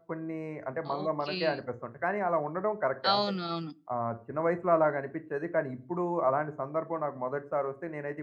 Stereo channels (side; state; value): both; identical; correlation 1.00